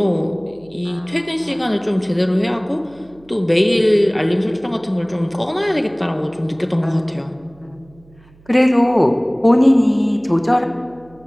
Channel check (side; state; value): right; noise; hum, 28 dB below the sound